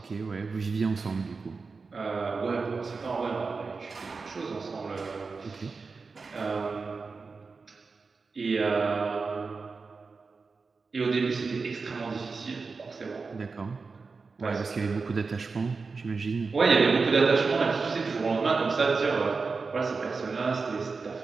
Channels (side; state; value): left; quieter; 4.5 dB